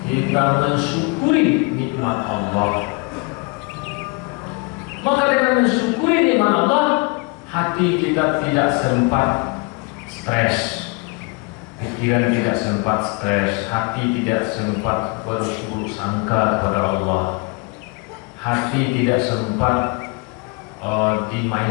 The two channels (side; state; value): right; quieter; 29.3 dB